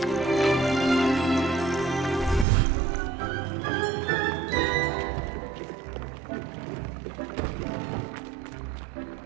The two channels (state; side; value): drops out; left; at 2.5 s